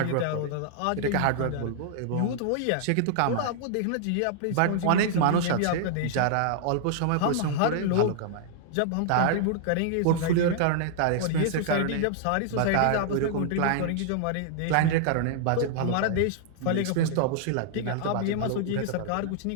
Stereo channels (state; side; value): different; both; correlation -0.01